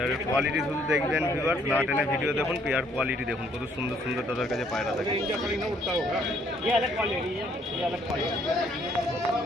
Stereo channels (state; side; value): normal; both; correlation 0.65